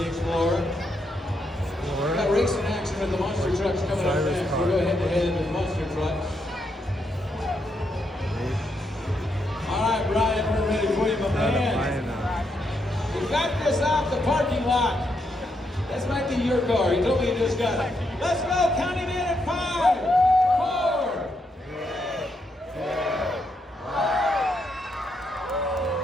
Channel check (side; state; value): both; normal; correlation 0.79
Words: Explorer. We've got racing action with the monster trucks coming up next. We'll go head to head with the monster trucks. All right, Brian, we're ready for you, my man. We got this off the parking lot. This might be your car. He told me you just got it. Let's go. Count him in at 5, 4, 3, 2, 1.